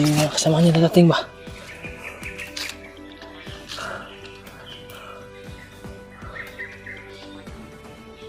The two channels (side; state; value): both; identical; correlation 1.00